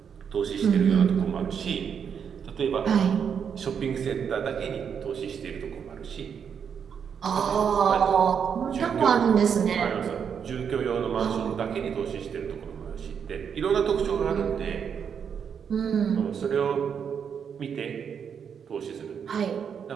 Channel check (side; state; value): left; quieter; 7.3 dB